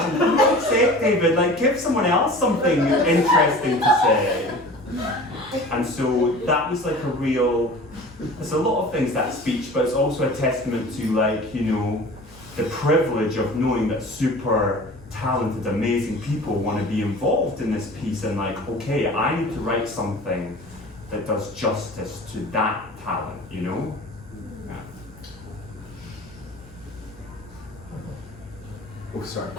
for God's sake, David, like give someone else something interesting to say. And so that was like a real, there's a lot of things, that speech, but it's also a testament to like, you know, the privilege of knowing that super talented, amazing people want to be involved in this piece, and like, okay, I need to write something that does justice to that talent, you know? Yeah. Oh, sorry.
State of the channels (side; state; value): left; noise; hum, 22 dB below the sound